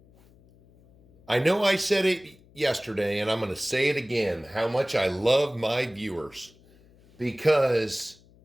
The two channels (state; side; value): noise; left; hum, 28 dB below the sound